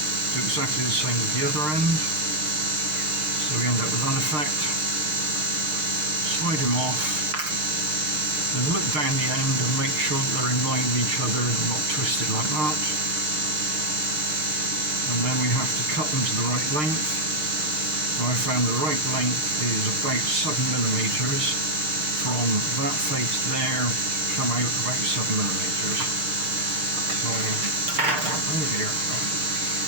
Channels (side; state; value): left; late; 6.5 ms